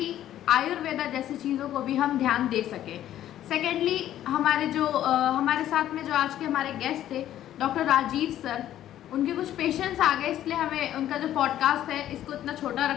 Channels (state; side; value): quieter; right; 12.2 dB